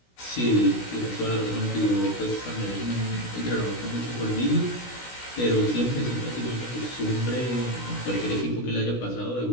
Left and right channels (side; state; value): right; late; 16 ms